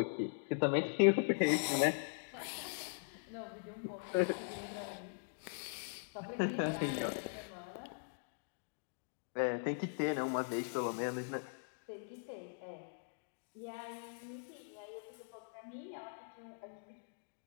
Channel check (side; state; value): right; silent; digital silence